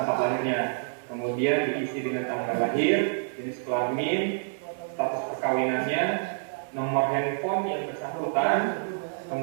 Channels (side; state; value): left; silent; digital silence